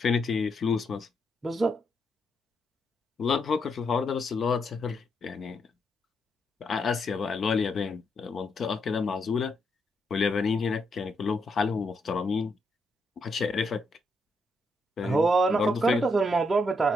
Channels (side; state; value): both; normal; correlation 0.78